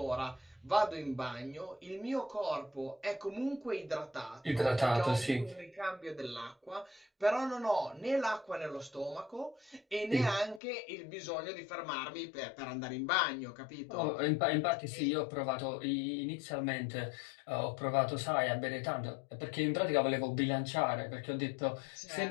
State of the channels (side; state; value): right; drops out; at 10.6 s